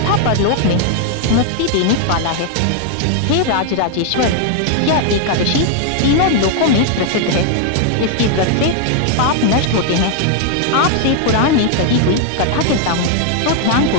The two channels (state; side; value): different; both; correlation 0.00